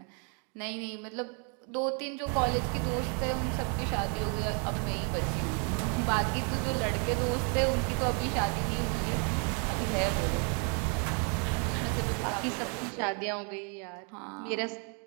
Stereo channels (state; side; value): quieter; left; 38.3 dB